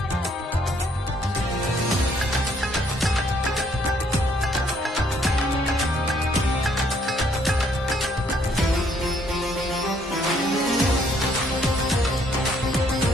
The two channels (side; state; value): both; normal; correlation 0.67